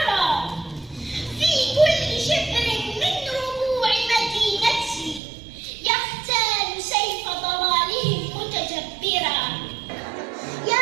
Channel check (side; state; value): left; drops out; at 5.2 s